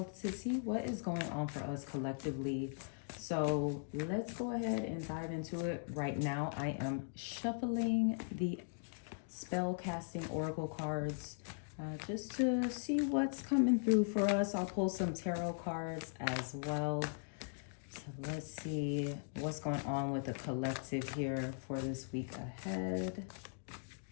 to see what is going on for us collectively. So let's go ahead and dive into it. Right now, I am shuffling the spell casting oracle cards just to see what's coming through for us. I'll pull some tarot cards as well. So let's see what's going on with the collective here for this week ahead.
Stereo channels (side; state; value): right; silent; digital silence